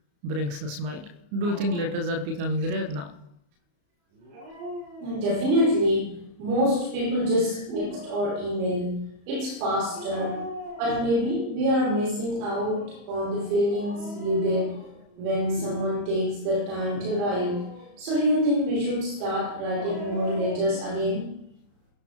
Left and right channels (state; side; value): late; left; 34 ms